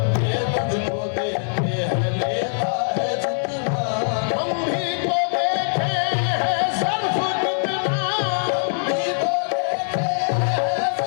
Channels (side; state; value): right; silent; digital silence